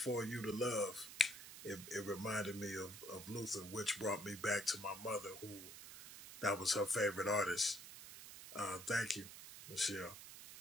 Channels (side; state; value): right; noise; hiss, 13 dB below the sound